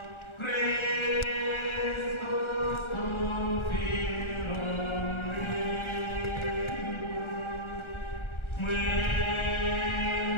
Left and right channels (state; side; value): late; right; 1.4 ms